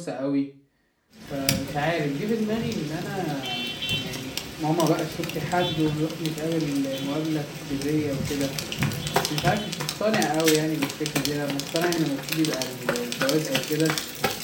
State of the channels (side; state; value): both; identical; correlation 1.00